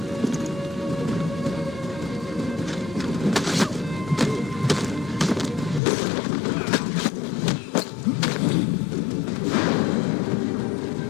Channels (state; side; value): drops out; right; at 5.8 s